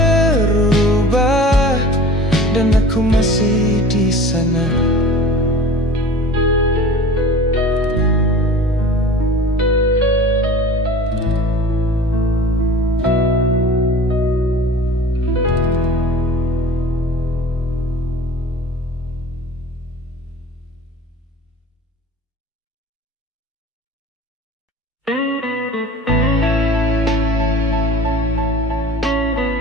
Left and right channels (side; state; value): both; normal; correlation 0.41